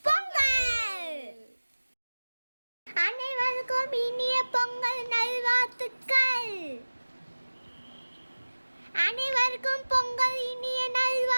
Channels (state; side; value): inverted; both; correlation -1.00